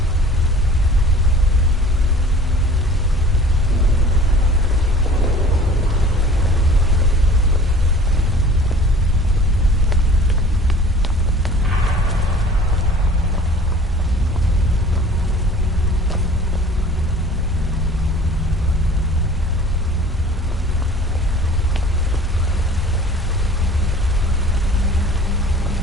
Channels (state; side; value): normal; both; correlation 0.47